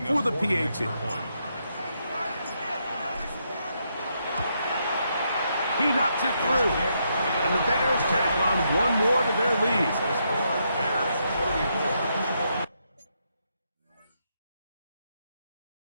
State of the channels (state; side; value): inverted; both; correlation -0.79